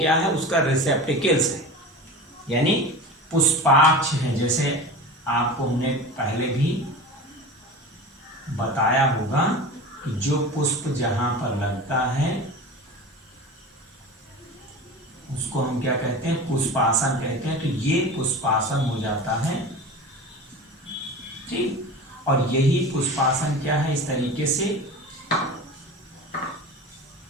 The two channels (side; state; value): both; normal; correlation 0.32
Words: है? उसका रिसेप्टिकल्स है, यानी पुष्पाक्ष है। जैसे आपको हमने पहले भी बताया होगा कि जो पुष्प जहां पर लगता है उसको हम क्या कहते हैं? पुष्पासन कहते हैं। तो ये पुष्पासन हो जाता है। ठीक, और यही पुष्पासन क्या है? इस तरीके से